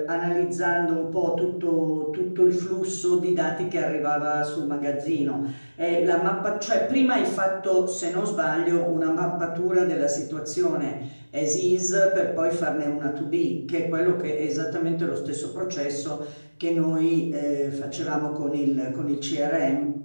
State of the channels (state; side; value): inverted; both; correlation -1.00